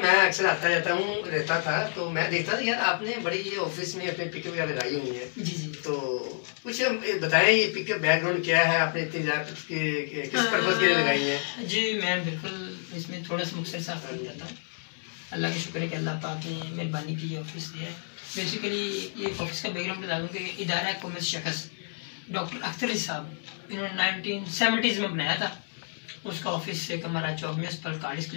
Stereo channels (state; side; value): silent; right; 59 dB below the other